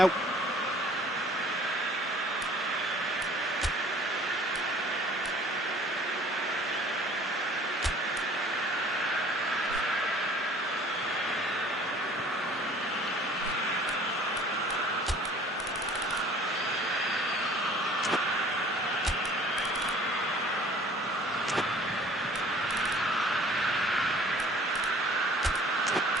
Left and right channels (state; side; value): normal; both; correlation 0.52